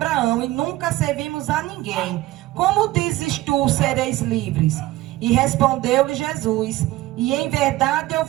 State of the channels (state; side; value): quieter; left; 17.2 dB